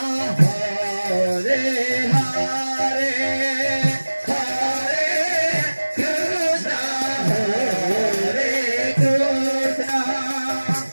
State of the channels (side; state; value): both; inverted; correlation -1.00